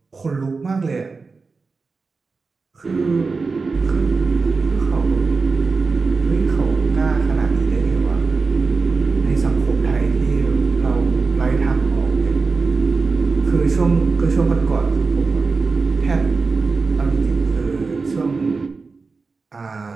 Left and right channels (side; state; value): left; quieter; 4.3 dB